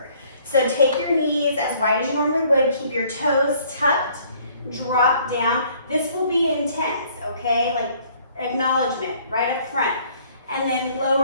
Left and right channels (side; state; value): both; inverted; correlation -0.60